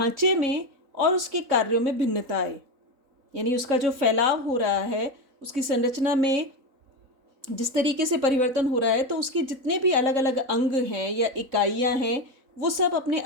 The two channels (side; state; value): left; late; 3.9 ms